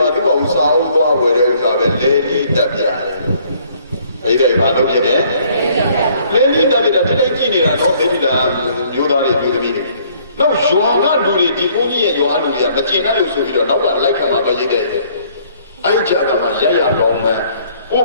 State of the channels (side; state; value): both; inverted; correlation -0.62